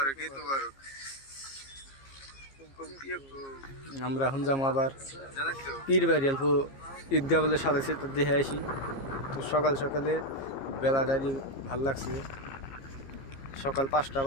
ईद मुबारक। আমরা এখন যাবো আবার পীর বাড়ি। অল্প ঈদগাহ বলে সাজাইছে, তো দেখে আসি। তো সকাল সকালে বেলাটারি ভাল লাগছে। সকাল 5টা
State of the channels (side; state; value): right; late; 15 ms